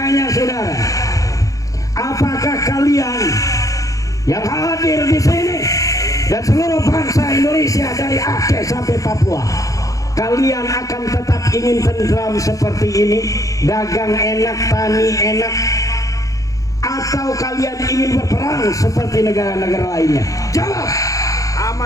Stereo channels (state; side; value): late; right; 0.16 ms